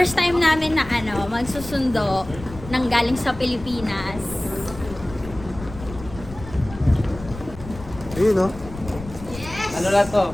time namin na magsusundo ng galing sa Pilipinas. Ayun, no? Yes! Ano lang to?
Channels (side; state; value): left; noise; rumble, 14 dB below the sound